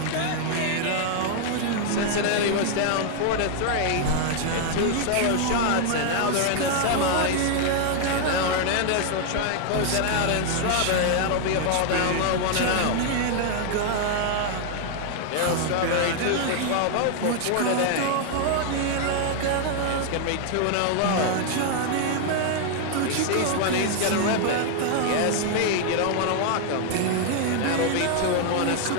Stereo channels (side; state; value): both; different; correlation 0.00